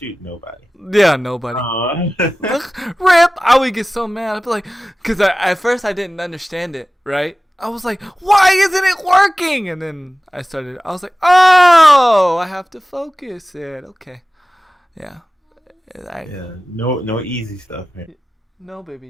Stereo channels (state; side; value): normal; both; correlation 0.96